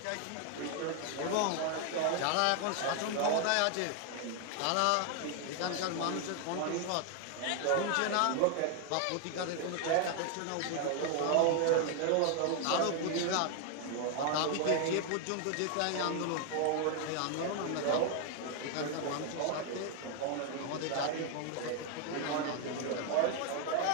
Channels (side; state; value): both; different; correlation 0.00